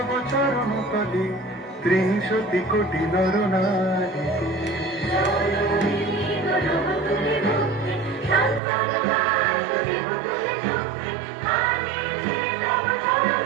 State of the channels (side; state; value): left; drops out; at 8.6 s